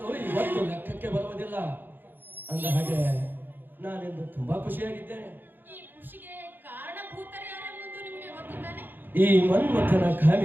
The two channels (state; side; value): late; left; 0.093 ms